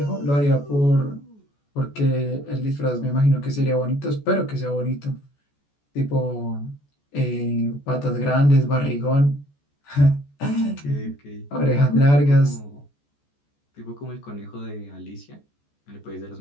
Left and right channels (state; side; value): late; right; 14 ms